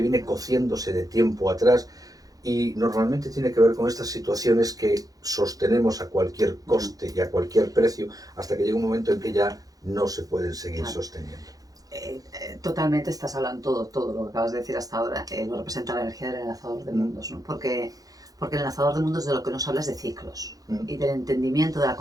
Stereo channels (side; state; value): left; late; 0.18 ms